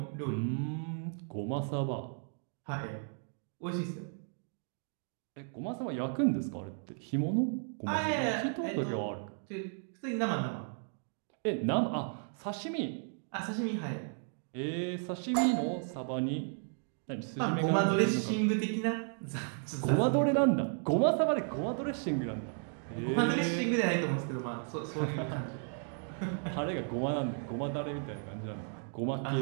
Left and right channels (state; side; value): silent; left; 55 dB below the other